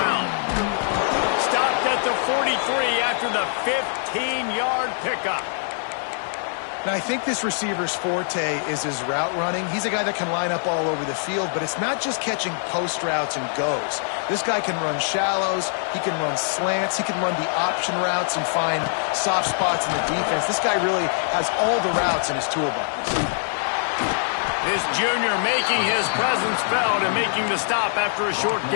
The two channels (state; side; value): silent; right; digital silence